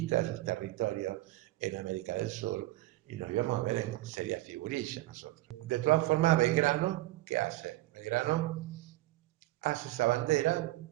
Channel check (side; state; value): left; quieter; 17.8 dB